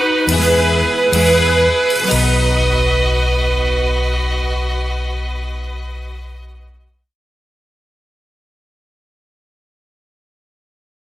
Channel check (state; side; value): normal; both; correlation 0.93